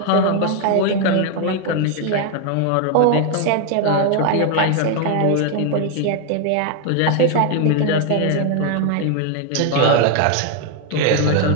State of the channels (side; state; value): both; different; correlation 0.01